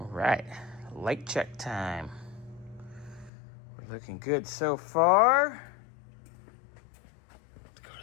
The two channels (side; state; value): right; drops out; at 3.3 s